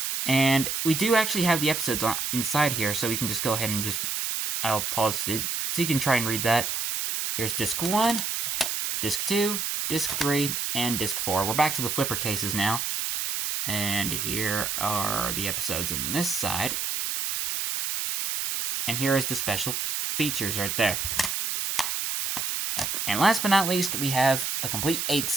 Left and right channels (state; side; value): noise; right; hiss, 1 dB below the sound